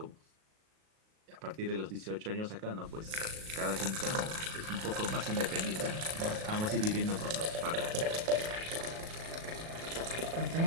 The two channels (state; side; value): late; left; 37 ms